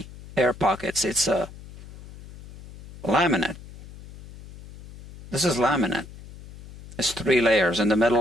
air pockets. It's a laminate. This is laminate. It's 3 layers, and the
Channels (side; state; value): left; noise; hum, 18 dB below the sound